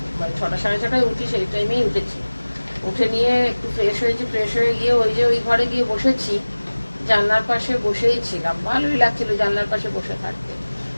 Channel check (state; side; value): inverted; both; correlation -1.00